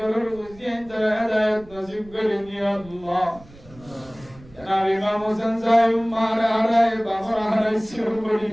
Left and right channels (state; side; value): noise; right; rumble, 22 dB below the sound